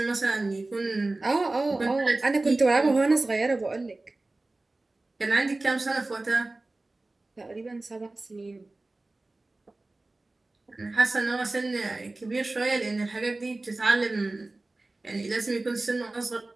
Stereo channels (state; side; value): quieter; left; 3.0 dB